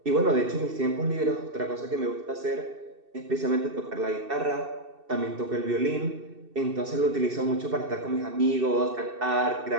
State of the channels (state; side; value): late; left; 2.7 ms